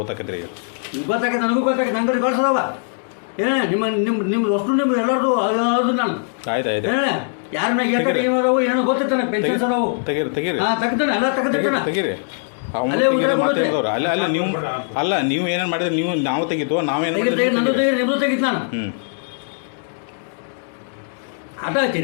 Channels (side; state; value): right; silent; 65 dB below the other